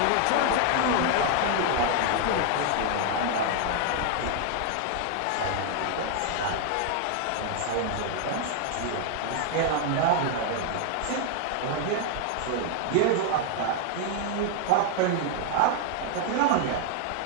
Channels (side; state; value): both; different; correlation 0.00